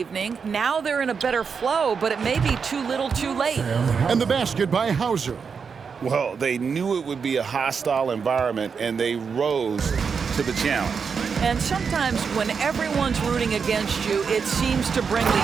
Now they're in a better flow, but it may be too little too late. And the basket by Hauser. Well, they knew it would be a hostile environment, and they rose to the challenge. And sometimes when everyone's rooting against you, it seems to bring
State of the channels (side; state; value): left; quieter; 5.9 dB